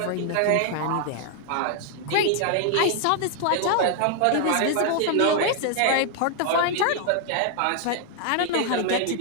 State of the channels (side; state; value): both; different; correlation 0.00